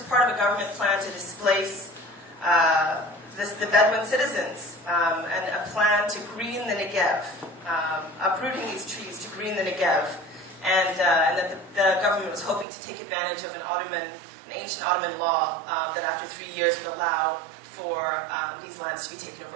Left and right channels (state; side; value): drops out; left; at 12.7 s